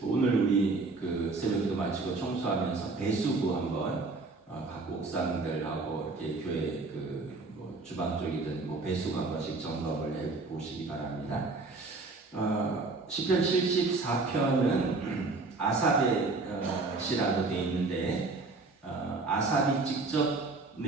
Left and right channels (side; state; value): left; quieter; 3.6 dB